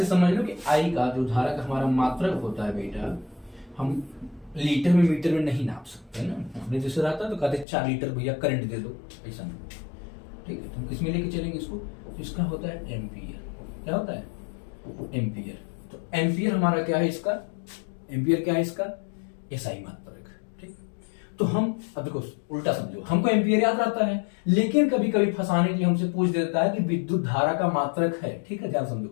समझ लो कि आई का जो धारा का हमारा मात्रक होता है बेटा, हम लीटर में मीटर में नहीं नाप सकते ना। हमने जैसे रहता तो कहते 4 लीटर भैया करंट दे दो, ऐसा नहीं, ठीक है। तो हम किसमें लेके चलेंगे इसको, तो इसका होता है एम्पियर। क्या होता है, एम्पियर। तो एम्पियर हमारा क्या है, इसका एम्पियर क्या है, इसका एसआई मात्रक, ठीक। तो हम अब देखो उल्टा समझो, हमको एम्पियर याद रहता है, लेकिन कभी कभी फंसाने के लिए हमसे पूछ देता है कि विद्युत धारा का मात्रक है, ठीक है। ध्यान समझो,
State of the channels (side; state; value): right; drops out; at 7.7 s